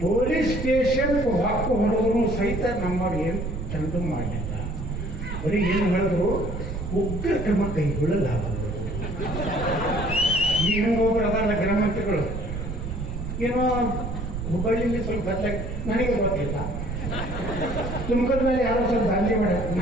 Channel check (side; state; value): right; noise; rumble, 5 dB below the sound